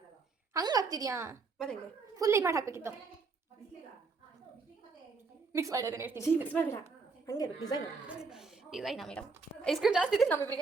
ಹಂಗಾಗ್ತಿದ್ಯಾ? ಫುಲ್ ಇದು ಮಾಡಿ ಹಾಕ್ಬೇಕಿತ್ತು. ಮಿಕ್ಸ್ ಮಾಡಿ ಅದನ್ನ ಹೇಳ್ತೀನಿ. ಮಿಕ್ಸ್ ಮಾಡಿಲ್ಲ, ಹಂಗೆ ಡಿಸೈನ್ ಮೇಡಮ್. ಐಸ್ ಕ್ರೀಮ್ ಜಾಸ್ತಿ ಇದೆ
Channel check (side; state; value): left; quieter; 4.5 dB